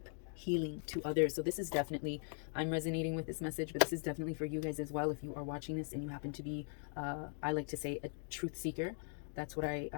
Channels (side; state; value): right; silent; 51 dB below the other